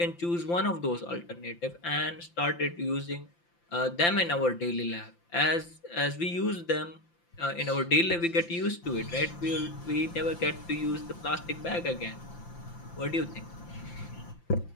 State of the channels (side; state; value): right; late; 5.8 ms